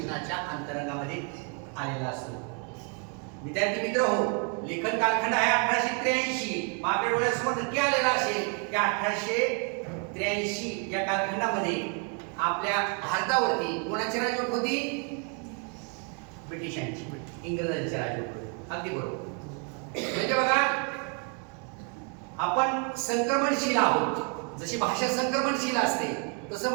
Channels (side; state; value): left; quieter; 38.6 dB